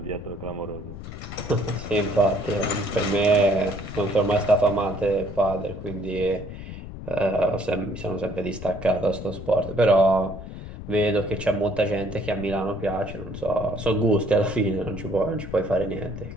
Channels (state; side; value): noise; left; rumble, 11 dB below the sound